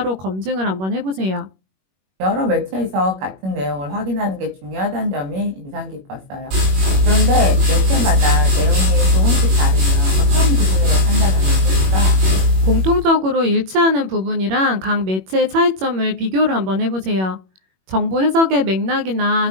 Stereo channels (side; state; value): left; late; 21 ms